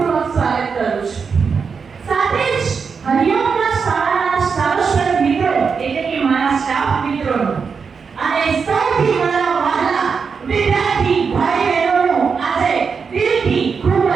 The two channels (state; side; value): quieter; left; 5.6 dB